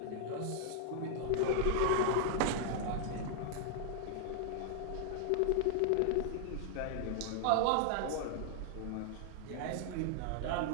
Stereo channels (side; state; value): both; different; correlation 0.00